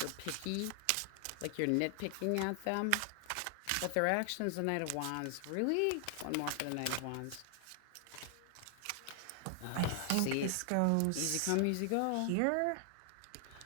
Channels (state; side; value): different; both; correlation 0.00